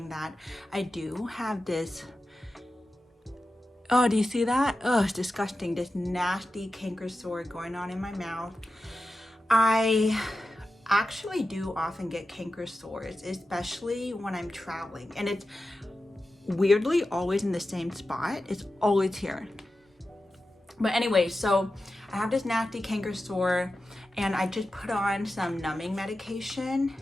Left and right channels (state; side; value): normal; both; correlation 0.92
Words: that I do have this. Oh, do you see that? Oh, it's disgusting. This nasty canker sore going on in my mouth. I actually do often get canker sores, especially when I'm traveling. And it's weirdly always in the same spot. It's always here. But anyway, so I have this nasty canker sore and I just put on some numbing medication.